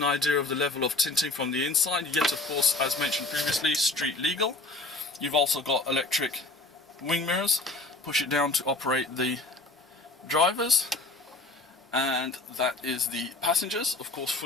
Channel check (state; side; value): quieter; right; 3.2 dB